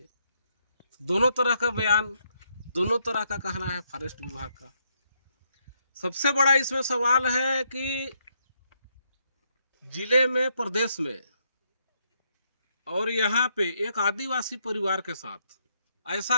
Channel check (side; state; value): both; inverted; correlation -0.75